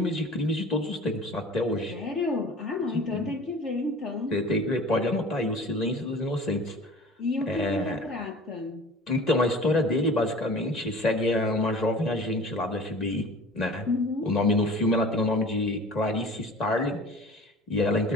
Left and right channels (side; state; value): both; normal; correlation 0.43